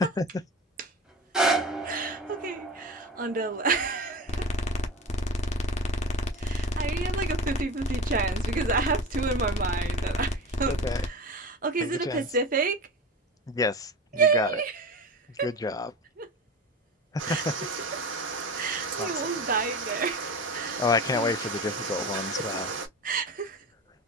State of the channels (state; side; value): normal; both; correlation 0.30